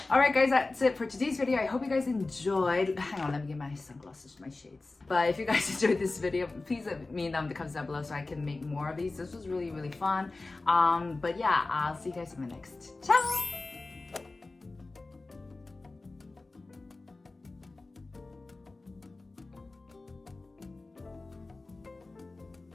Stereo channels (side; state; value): right; quieter; 3.4 dB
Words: Alright guys, that's it for today's video. I hope you guys enjoyed. Hang on, let me get my sunglasses, my shades. But if you guys enjoyed this video, please let me know in the comments down below so I can make more of these. This was really, really fun. But yeah, I'll see you guys in the next. Ciao!